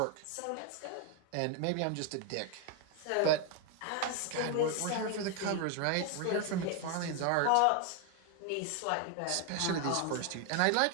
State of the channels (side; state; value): both; different; correlation 0.01